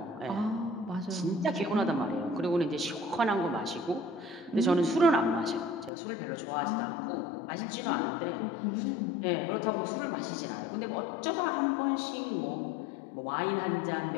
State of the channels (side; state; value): right; drops out; at 5.9 s